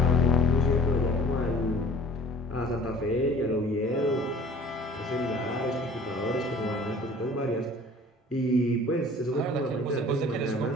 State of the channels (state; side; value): normal; both; correlation 0.48